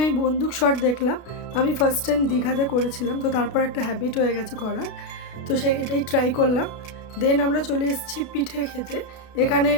বন্দুক শট দেখলাম। আমি ফার্স্ট টাইম দীঘাতে করেছিলাম, তো তারপর একটা হ্যাবিট হয়ে গেছে করার। তো এটাই ট্রাই করলাম। দেন আমরা চলে এসেছি পিঠে খেতে। এখানে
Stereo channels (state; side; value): late; right; 33 ms